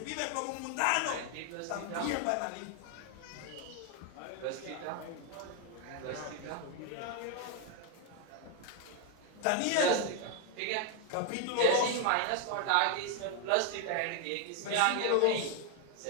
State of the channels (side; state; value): both; different; correlation 0.01